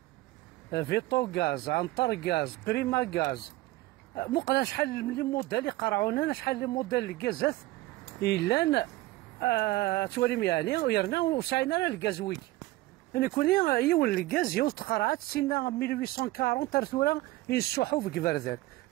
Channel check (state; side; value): quieter; left; 18.4 dB